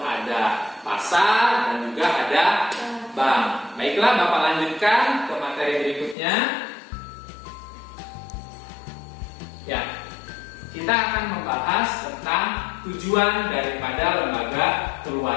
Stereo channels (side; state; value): right; drops out; at 6.2 s